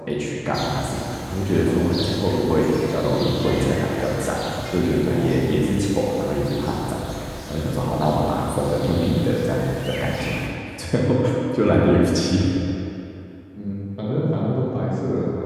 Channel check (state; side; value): identical; both; correlation 1.00